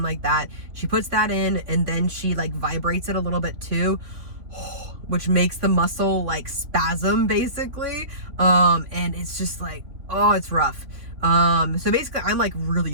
like that. She puts that in and then she like vibrates it a little bit too, which makes the muscle like spasm basically. And it's just like, oh, it's rough. So basically I'm like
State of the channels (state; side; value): late; left; 3.5 ms